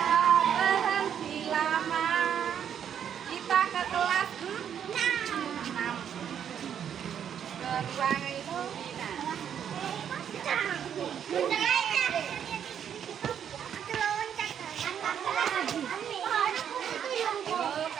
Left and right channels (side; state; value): left; quieter; 8.8 dB